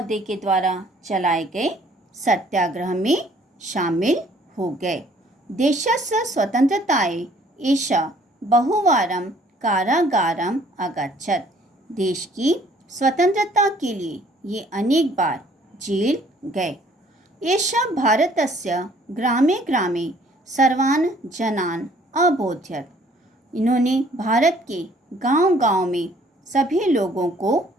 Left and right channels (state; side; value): normal; both; correlation 0.59